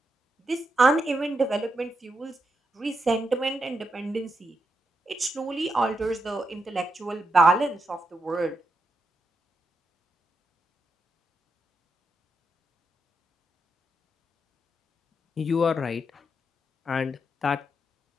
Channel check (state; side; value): normal; both; correlation 0.83